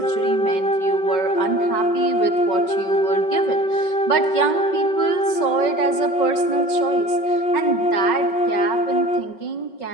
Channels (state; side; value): late; right; 5.4 ms